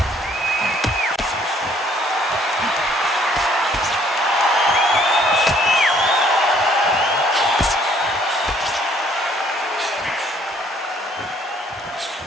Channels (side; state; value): both; normal; correlation 0.62